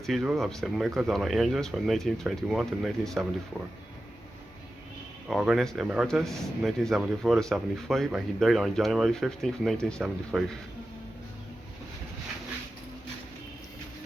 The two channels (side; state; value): both; normal; correlation 0.93